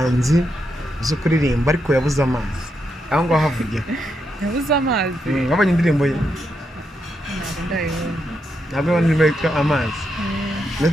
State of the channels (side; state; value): both; normal; correlation 0.82